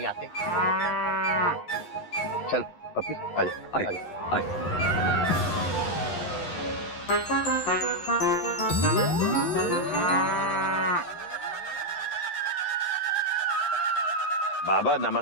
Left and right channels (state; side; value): late; right; 11 ms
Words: आते। चल पप्पी आजा। बाबा